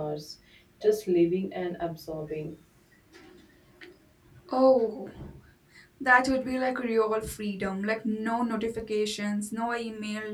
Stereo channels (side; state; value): both; identical; correlation 1.00